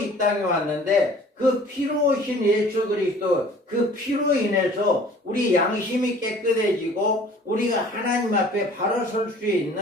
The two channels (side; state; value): both; normal; correlation 0.50